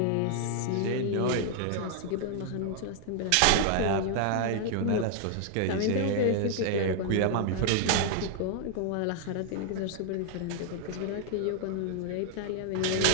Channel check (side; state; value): both; different; correlation 0.00